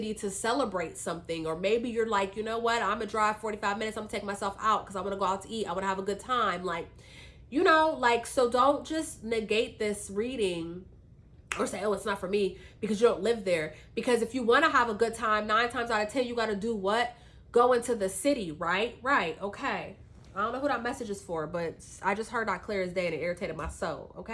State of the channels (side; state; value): both; identical; correlation 1.00